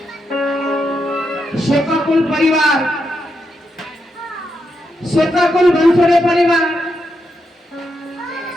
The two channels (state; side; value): normal; both; correlation 0.83